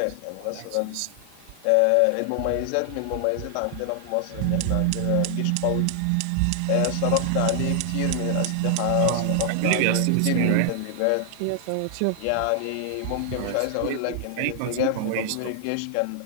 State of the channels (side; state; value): both; different; correlation 0.00